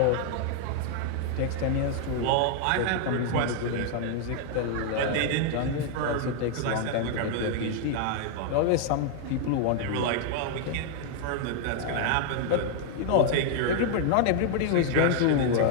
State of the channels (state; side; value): different; both; correlation 0.00